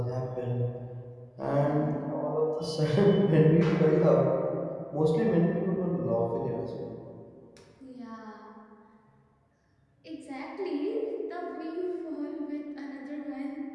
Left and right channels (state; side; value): identical; both; correlation 1.00